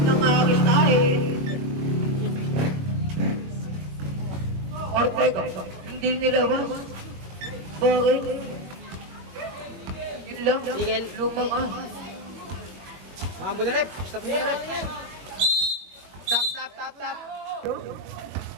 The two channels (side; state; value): left; late; 21 ms